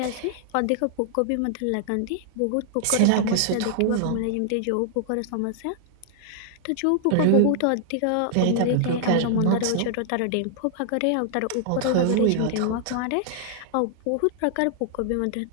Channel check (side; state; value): both; different; correlation -0.01